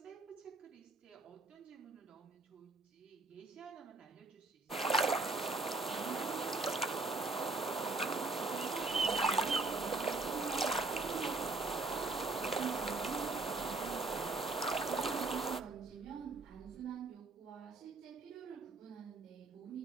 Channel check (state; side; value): quieter; left; 3.5 dB